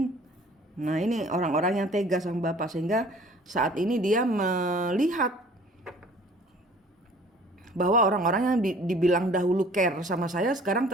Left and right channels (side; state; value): both; normal; correlation 0.51